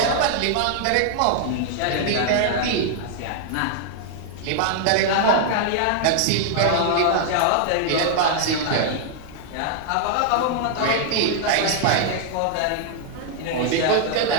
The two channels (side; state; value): both; different; correlation -0.01